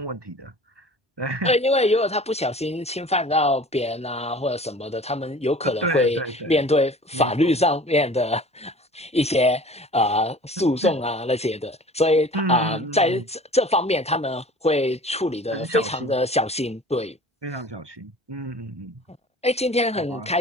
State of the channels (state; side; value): normal; both; correlation 0.44